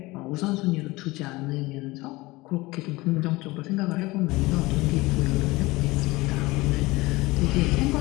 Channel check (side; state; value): right; quieter; 21.3 dB